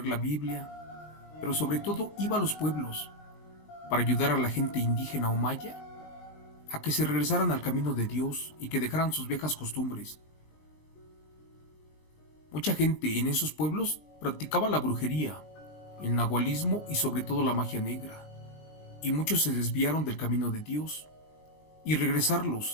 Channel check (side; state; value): right; late; 20 ms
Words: la Biblia, pero sobre todo iba a los pueblos para ayudar a la gente indígena o maya a que se regresaran al camino de Dios y que dejaran sus viejas costumbres. Mucha gente en esos pueblos practicaba la brujería, el nahualismo y sobre todo la magia negra, y muchos se desviaron del camino de Dios, y